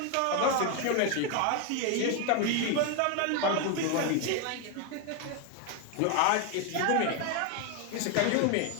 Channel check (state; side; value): different; both; correlation 0.01